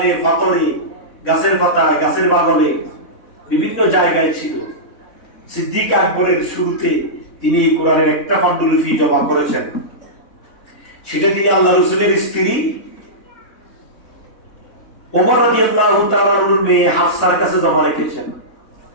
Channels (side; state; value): right; late; 3.6 ms